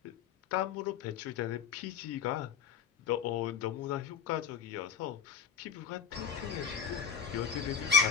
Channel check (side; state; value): right; quieter; 6.9 dB